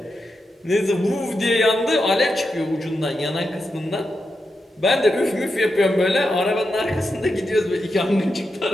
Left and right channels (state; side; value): normal; both; correlation 0.87